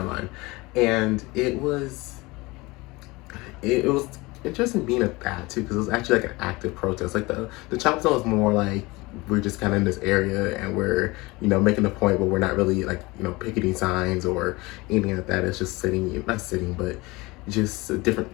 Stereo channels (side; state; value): right; quieter; 22.8 dB